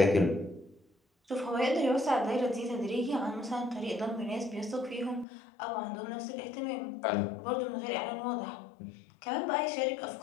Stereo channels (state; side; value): drops out; right; at 5.2 s